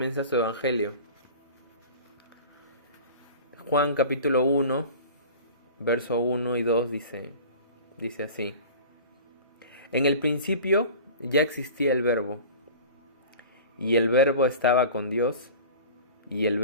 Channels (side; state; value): both; inverted; correlation -0.39